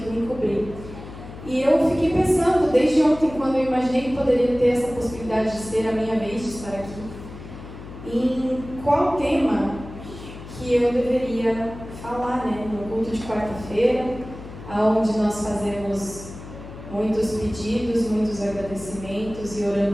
vim cobrir. E eu fiquei pensando, desde ontem, quando eu imaginei que poderia ter essa possibilidade de ser a minha vez de estar aqui, em qual tema que eu deveria falar, né? No culto de quarta-feira, onde nós fazemos muitos pedidos, muitos agradecimentos e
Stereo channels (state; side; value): noise; left; hum, 14 dB below the sound